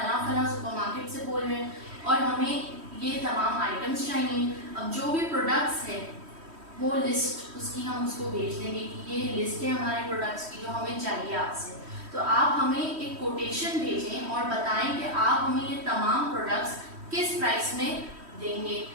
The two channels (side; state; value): left; late; 3.1 ms